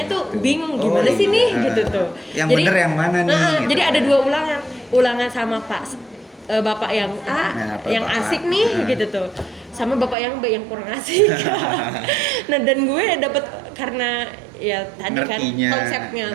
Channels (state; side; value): drops out; left; at 10.2 s